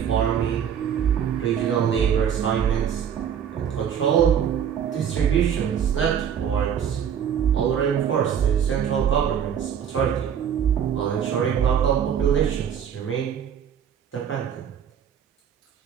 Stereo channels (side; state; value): left; quieter; 8.5 dB